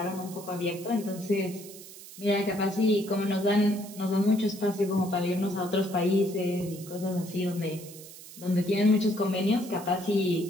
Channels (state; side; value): noise; right; hiss, 16 dB below the sound